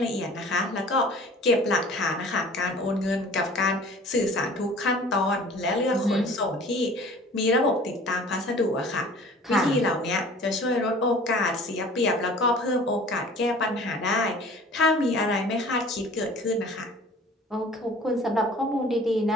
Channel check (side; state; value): both; normal; correlation 0.47